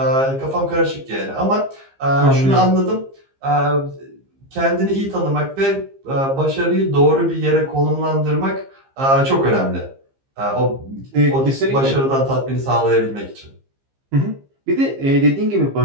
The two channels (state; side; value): late; left; 15 ms